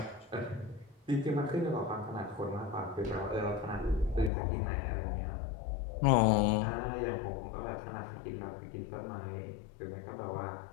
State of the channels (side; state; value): right; drops out; at 4.3 s